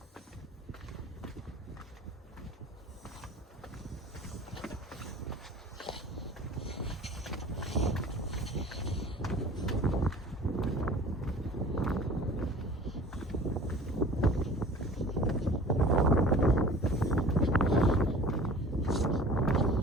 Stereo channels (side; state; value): both; normal; correlation 0.44